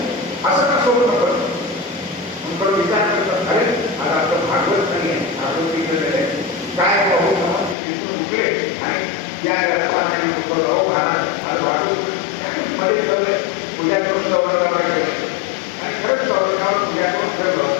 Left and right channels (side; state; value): right; drops out; at 7.8 s